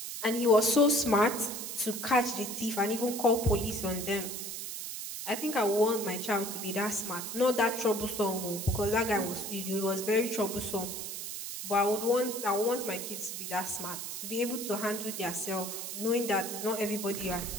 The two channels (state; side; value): noise; right; hiss, 6 dB below the sound